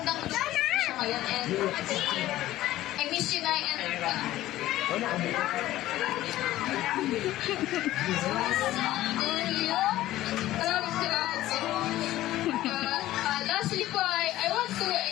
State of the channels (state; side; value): quieter; right; 15.0 dB